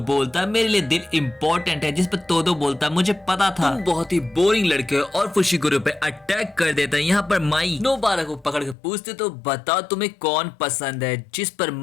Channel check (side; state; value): right; drops out; at 8.8 s